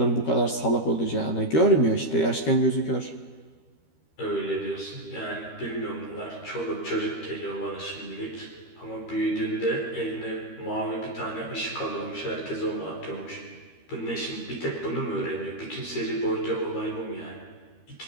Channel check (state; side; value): late; right; 13 ms